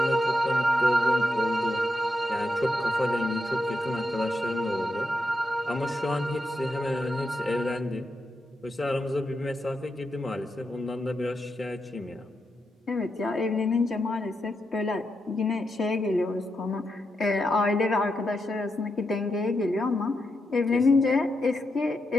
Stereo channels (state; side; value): normal; both; correlation 0.85